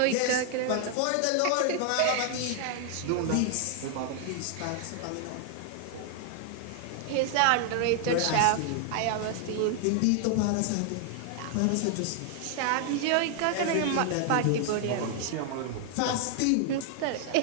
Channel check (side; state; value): both; different; correlation 0.00